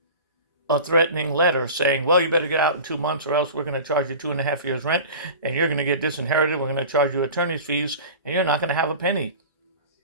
a threatening letter saying, well, you better get out in 2 months or else we're going to charge you 2.5 years rent and you're going to get disinherited. We're going to charge you attorney's fees and you're not going to have a penny.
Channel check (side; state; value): both; inverted; correlation -0.36